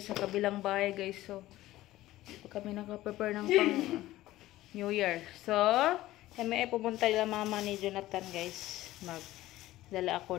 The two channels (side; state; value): right; quieter; 15.9 dB